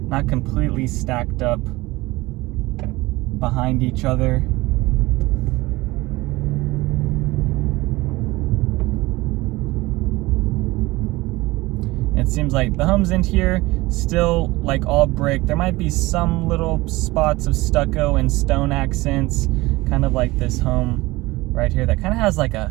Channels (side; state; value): left; quieter; 20.5 dB